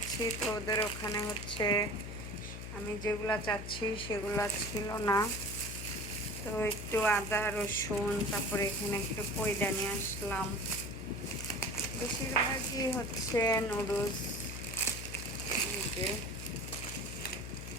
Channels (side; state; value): left; noise; hum, 8 dB below the sound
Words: তো ওদের ওখানে হচ্ছে আমি যেগুলা চাচ্ছি সেগুলা ছিল না। তো একটু আদা রসুন, তারপরে এখানে একটু পয়দা নিয়ে আসলাম। বেশিরভাগই হচ্ছে নুডলস। এই যে